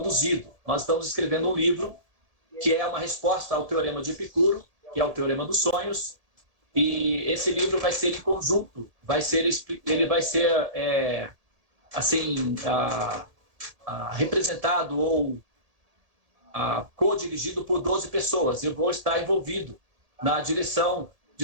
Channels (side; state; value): left; late; 1.8 ms